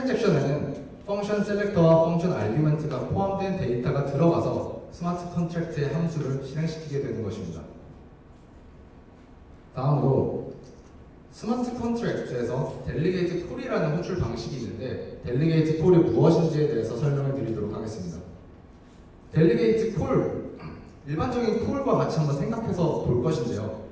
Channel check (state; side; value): identical; both; correlation 1.00